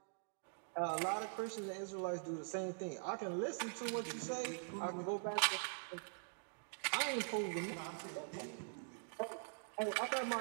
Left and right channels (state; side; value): silent; left; digital silence